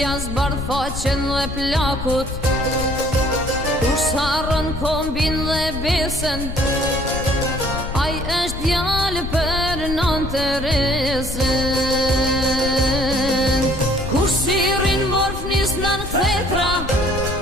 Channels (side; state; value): left; noise; rumble, 7 dB below the sound